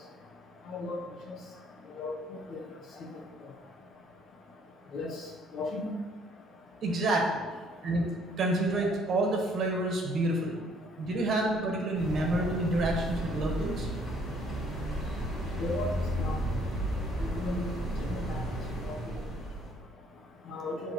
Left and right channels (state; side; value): normal; both; correlation 0.63